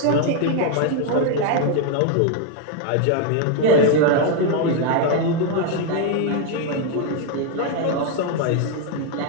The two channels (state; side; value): different; both; correlation 0.00